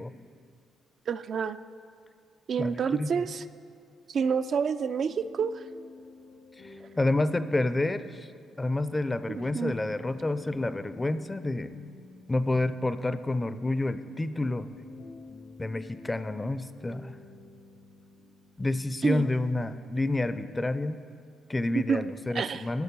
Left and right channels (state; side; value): normal; both; correlation 0.89